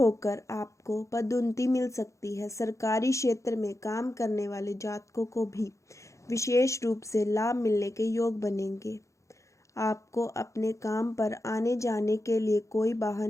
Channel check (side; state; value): right; late; 0.15 ms